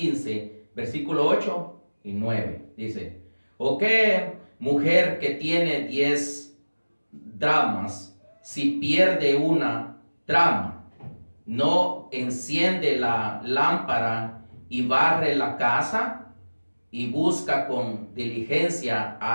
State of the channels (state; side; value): inverted; both; correlation -1.00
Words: versículo 8 y 9. Dice: ¿o qué mujer que tiene 10 dracmas, si pierde una dracma, no enciende la lámpara y barre la casa y busca con diligencia